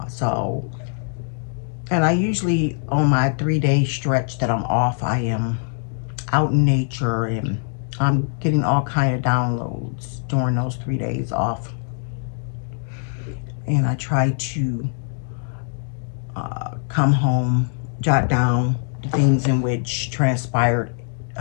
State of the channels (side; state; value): right; silent; 60 dB below the other